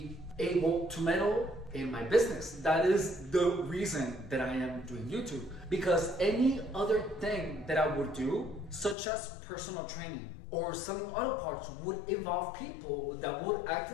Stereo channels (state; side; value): drops out; right; at 9.0 s